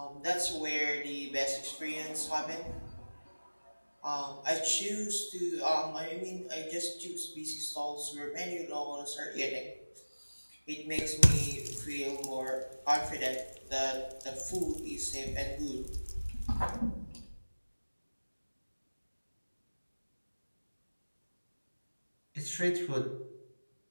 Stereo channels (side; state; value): both; inverted; correlation -1.00